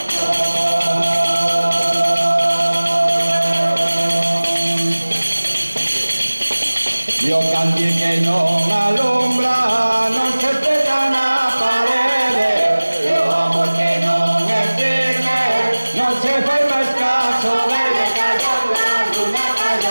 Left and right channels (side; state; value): both; inverted; correlation -1.00